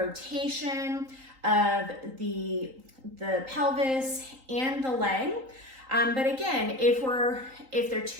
of the pelvis and the leg. But again, if they're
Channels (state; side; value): late; left; 3.8 ms